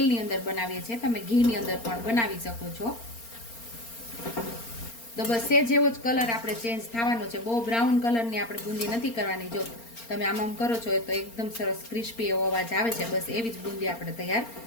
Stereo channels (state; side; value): late; right; 4.3 ms